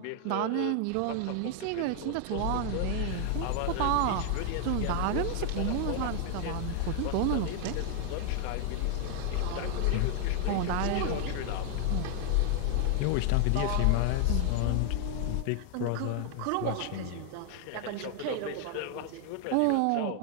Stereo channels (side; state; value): both; different; correlation 0.00